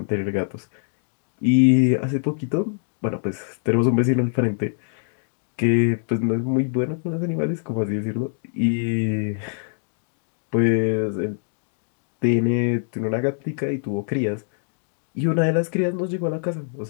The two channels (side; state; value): right; silent; digital silence